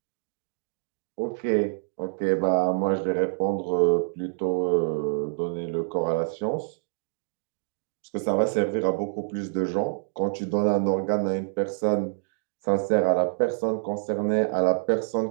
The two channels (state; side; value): silent; left; digital silence